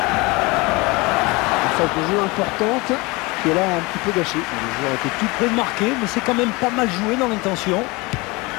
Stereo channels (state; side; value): quieter; right; 24.8 dB